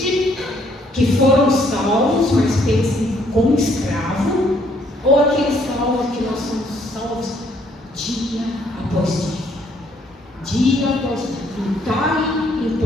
que foram salvos, mas pensam como escravo, ou aqueles salvos que nós somos salvos dia após dia? Dia após dia, entrarem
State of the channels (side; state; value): both; normal; correlation 0.66